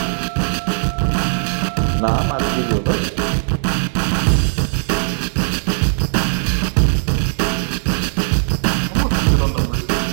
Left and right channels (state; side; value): silent; left; digital silence